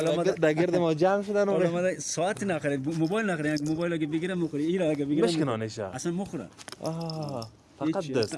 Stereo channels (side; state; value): both; identical; correlation 1.00